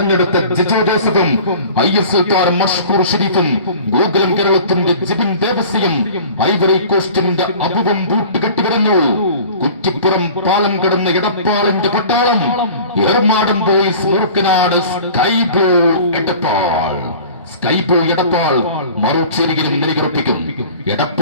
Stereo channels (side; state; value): both; inverted; correlation -0.43